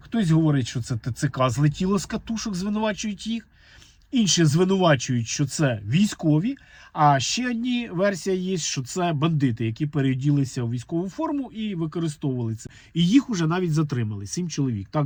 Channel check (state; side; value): identical; both; correlation 1.00